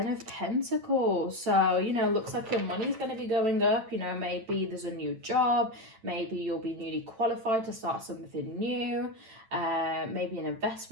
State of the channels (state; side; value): late; left; 9.0 ms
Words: of Pentacles. So, you know, looks like your money's going to be going up. You know, maybe there's a new job. Maybe you'll be newly qualified to start something new. Maybe an